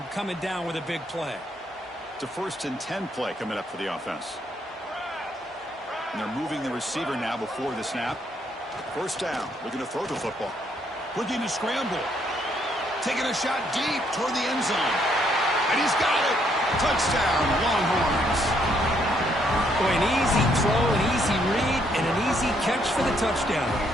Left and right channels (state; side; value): normal; both; correlation 0.71